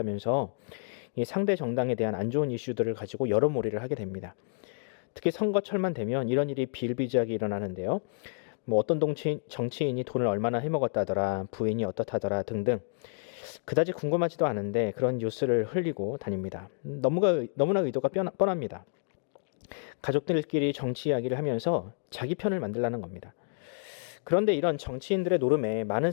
상대 정당에 대한 안 좋은 이슈들을 가지고 여론몰이를 하게 됩니다. 특히 선거철만 되면 이런 일이 비일비재하게 일어나는데요. 어떤 정치인이 돈을 얼마나 해먹었다더라, 부인이 어떻다더라 등등 그다지 궁금하지도 않은데 그런 뉴스를 흘리고 다닙니다. 너무나 의도가 뻔합니다. 가족들끼리 정치 이야기를 하면서 자기 편을 만들라는 겁니다. 그런데 이런 정치인들의 노름에 많은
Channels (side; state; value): right; silent; digital silence